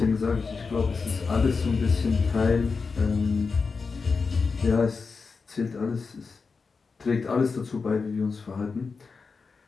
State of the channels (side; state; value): right; quieter; 4.8 dB